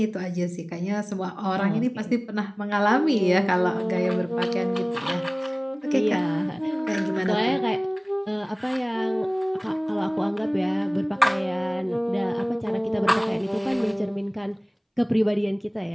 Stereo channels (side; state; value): both; identical; correlation 1.00